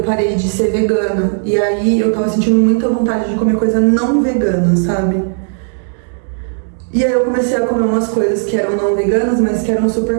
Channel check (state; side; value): silent; left; digital silence